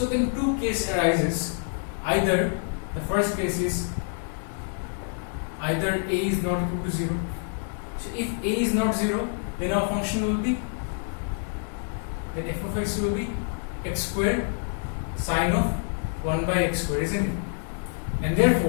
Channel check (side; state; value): right; silent; 60 dB below the other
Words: then two cases arises. Either the first case is either a is not equal to 0. So if a is not 0, then our function will be, then f of x will be x squared sine of 1 by x squared, isn't it? And